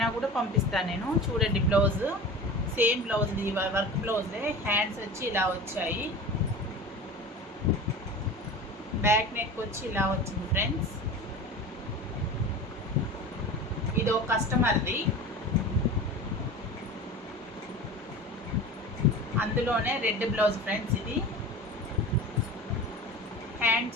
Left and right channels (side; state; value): both; normal; correlation 0.34